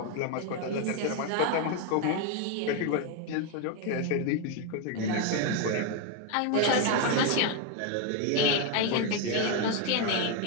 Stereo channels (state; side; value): different; both; correlation 0.01